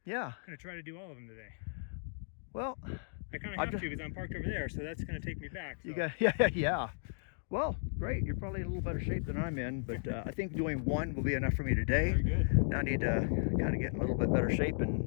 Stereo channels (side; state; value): right; silent; digital silence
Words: Yeah. gonna try to do all of them today. Well, I kind of have to because I'm parked over there, so that's gonna take me back. So. you got yeah. Well, great. You're probably in a little better shape than I'm in, but I think doing one will be enough for me today. Very good. Now I need to kind of get in a little bit better shape,